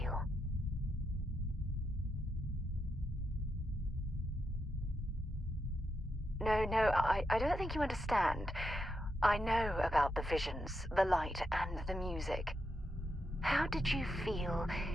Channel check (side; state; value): both; normal; correlation 0.83